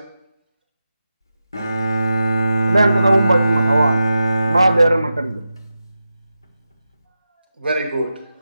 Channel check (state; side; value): inverted; both; correlation -0.91